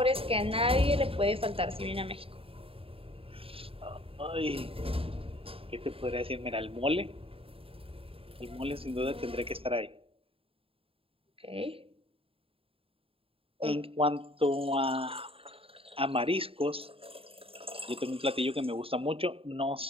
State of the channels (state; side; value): late; left; 0.27 ms